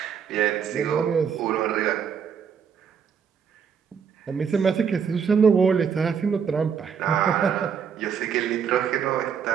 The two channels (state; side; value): quieter; left; 7.0 dB